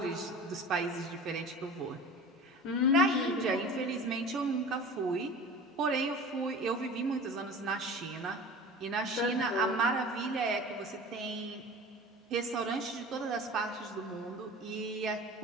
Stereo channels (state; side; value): normal; both; correlation 0.38